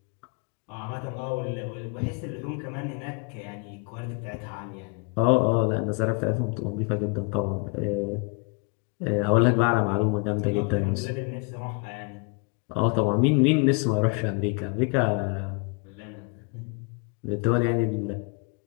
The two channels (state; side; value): quieter; right; 33.5 dB